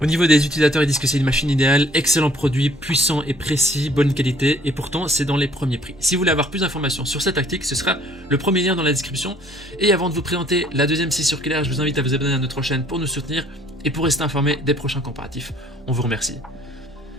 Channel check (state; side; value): normal; both; correlation 0.59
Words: niveau des utilisateurs, ils disent que c'est une machine idéale, excellent produit, puissant et précis, bonne qualité, et pourtant c'est dans les premiers prix. Si vous voulez avoir plus d'informations sur cette tactique, ce sera le premier lien dans la description. Et avant de vous présenter la deuxième scie circulaire, je vous invite à vous abonner à notre chaîne pour nous soutenir et pour rester informé des prochains comparatifs. On vous remercie.